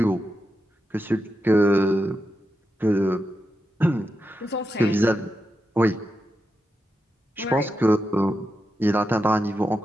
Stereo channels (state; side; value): normal; both; correlation 0.87